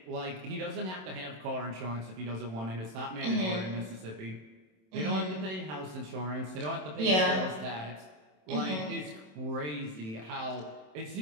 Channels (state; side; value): late; left; 27 ms